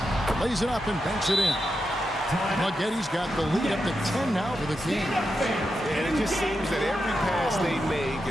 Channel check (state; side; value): normal; both; correlation 0.87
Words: Lays it up and banks it in. Maggetti's got the lead up to 10 now for the Kings. And it just seems that every pass they make